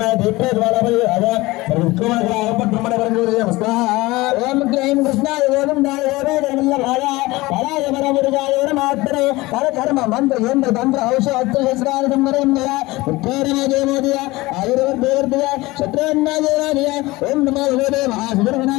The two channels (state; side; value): quieter; right; 20.6 dB